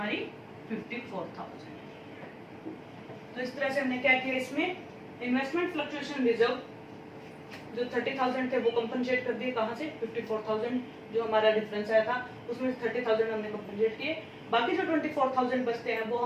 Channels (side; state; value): both; identical; correlation 1.00